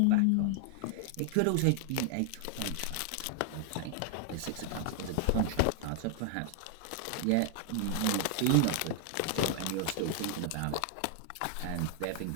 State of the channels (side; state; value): both; different; correlation 0.00